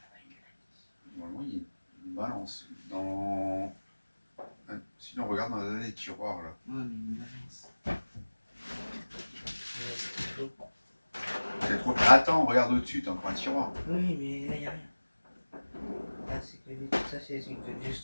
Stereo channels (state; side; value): inverted; both; correlation -1.00